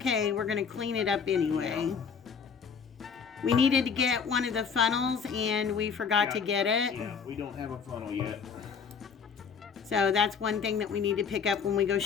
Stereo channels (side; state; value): right; quieter; 6.2 dB